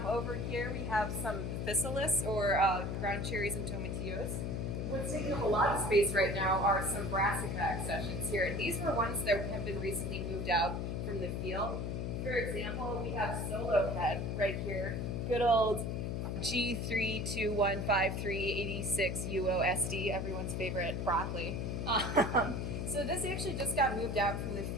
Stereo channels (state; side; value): noise; left; hum, 2 dB below the sound